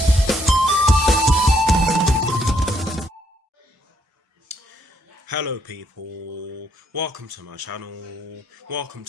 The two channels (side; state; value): both; normal; correlation 0.71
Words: Hello people, welcome to my channel, welcome